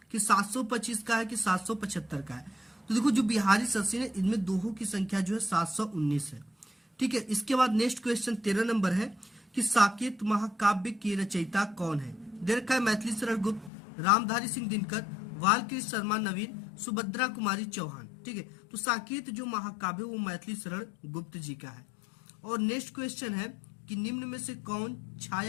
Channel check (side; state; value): right; drops out; at 13.7 s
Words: कि 725 का है, कि 775 का है। तो देखो जो बिहारी सतसई है इनमें दोहों की संख्या जो है 719 है। ठीक है, इसके बाद नेक्स्ट क्वेश्चन 13 नंबर है कि साकेत महाकाव्य के रचयिता कौन है। दे रखा है मैथिली शरण गुप्त, रामधारी सिंह दिनकर, बालकृष्ण शर्मा नवीन, सुभद्रा कुमारी चौहान। ठीक है, तो साकेत जो महाकाव्य वो मैथिली शरण गुप्त जी का है। और नेक्स्ट क्वेश्चन है कि निम्न में से कौन